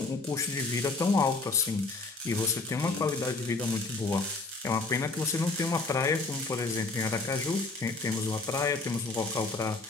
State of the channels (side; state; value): right; quieter; 3.6 dB